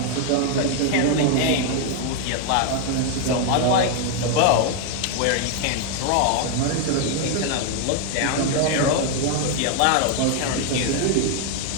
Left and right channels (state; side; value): different; both; correlation 0.00